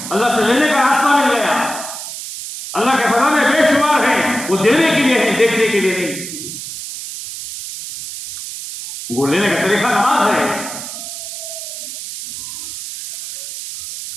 अल्लाह से लेने का रास्ता मिल गया। अल्लाह के खजाने बेशुमार हैं, वो देने के लिए है, देखने के लिए नहीं। वो लेने का तरीका नमाज है।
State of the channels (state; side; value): noise; right; hiss, 9 dB below the sound